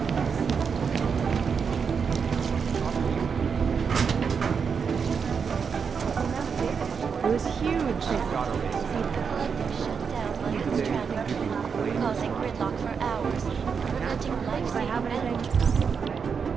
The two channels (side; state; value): left; quieter; 6.1 dB